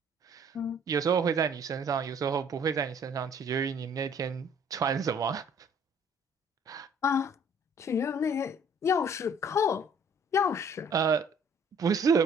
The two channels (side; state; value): both; normal; correlation 0.57